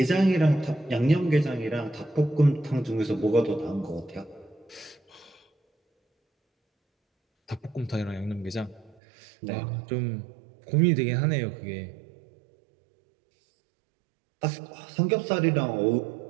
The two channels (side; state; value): left; drops out; at 9.0 s